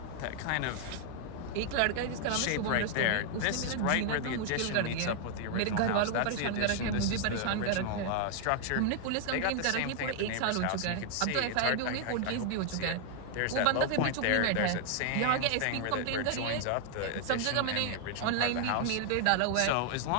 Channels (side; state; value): both; different; correlation 0.00